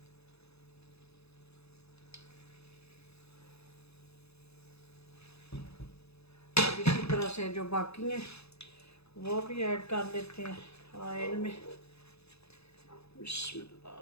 तरह से जो बाकी हैं वो भी ऐड कर लेते हैं ऑयल में।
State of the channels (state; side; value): late; right; 0.79 ms